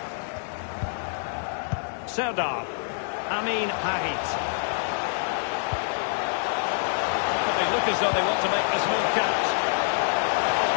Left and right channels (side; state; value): right; silent; digital silence